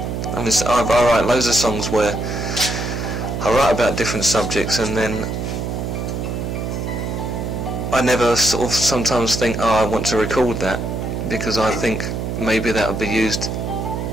I mean, I write loads of songs where I write about different subjects, and then I never sort of sometimes think, oh, I want to record that, because I think maybe that would be used.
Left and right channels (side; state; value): right; noise; hum, 3 dB below the sound